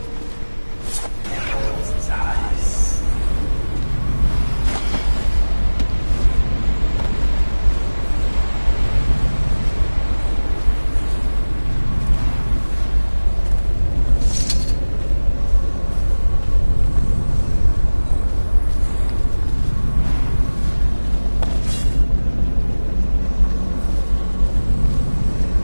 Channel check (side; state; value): both; inverted; correlation -1.00